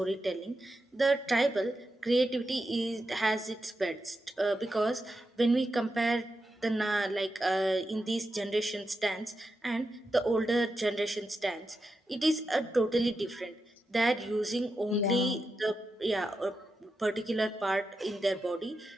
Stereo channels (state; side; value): normal; both; correlation 0.88